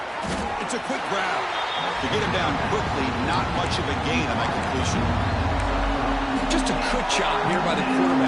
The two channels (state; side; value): identical; both; correlation 1.00